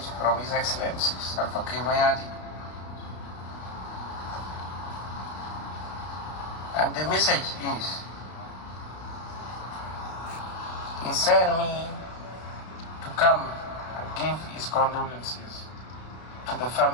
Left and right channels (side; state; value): right; late; 32 ms